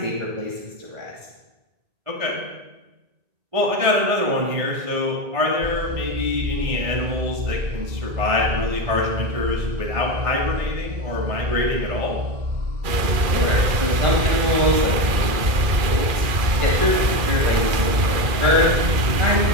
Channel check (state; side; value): late; left; 2.4 ms